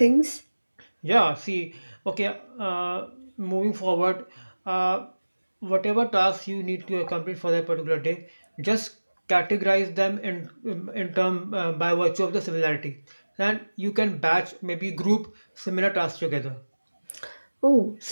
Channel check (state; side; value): inverted; both; correlation -1.00